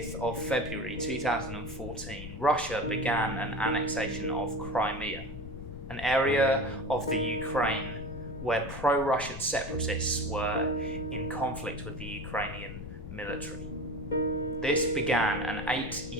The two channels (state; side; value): noise; left; rumble, 10 dB below the sound